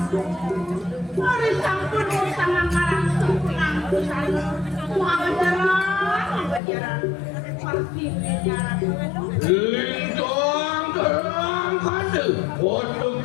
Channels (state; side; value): drops out; right; at 6.6 s